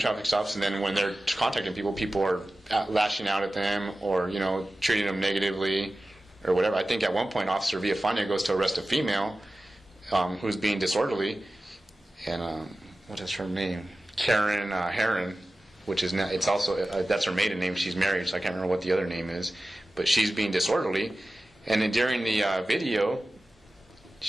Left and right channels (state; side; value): normal; both; correlation 0.96